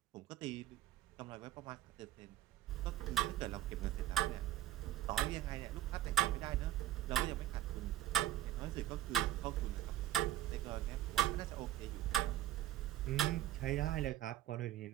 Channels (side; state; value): left; quieter; 13.5 dB